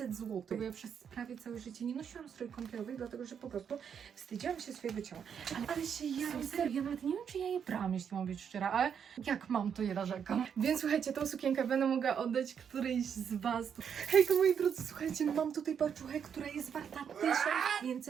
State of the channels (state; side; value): quieter; left; 7.6 dB